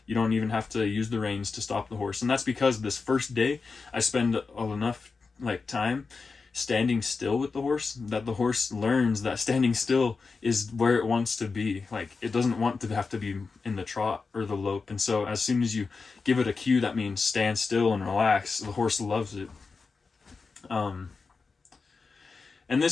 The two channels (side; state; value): right; quieter; 4.5 dB